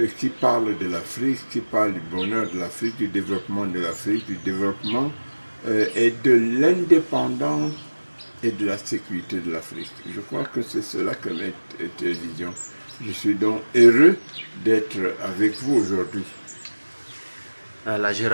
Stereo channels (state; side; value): inverted; both; correlation -1.00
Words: qui parle de l'Afrique, qui parle du bonheur de l'Afrique, du développement de l'Afrique, du développement et de l'indépendance et de la sécurité de l'Afrique. Je crois que c'est cela que met télévision. Je suis donc heureux d'être avec vous aujourd'hui. Voilà, je